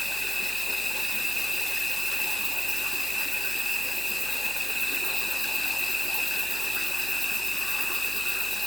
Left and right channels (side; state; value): right; noise; hum, 20 dB below the sound